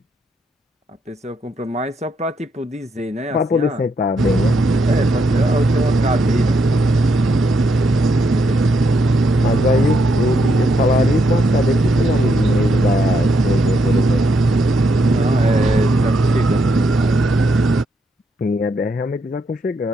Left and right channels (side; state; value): both; normal; correlation 0.77